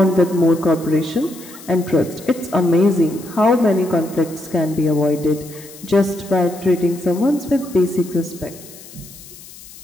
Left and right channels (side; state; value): left; noise; hiss, 19 dB below the sound